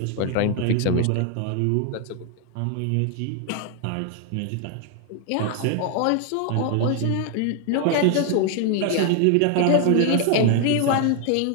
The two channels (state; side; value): different; both; correlation 0.00